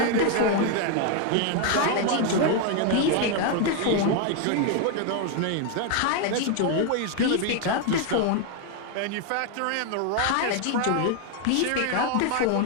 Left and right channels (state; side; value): different; both; correlation 0.01